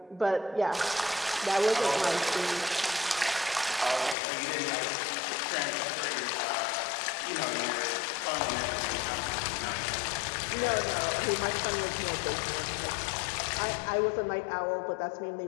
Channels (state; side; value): drops out; right; at 4.2 s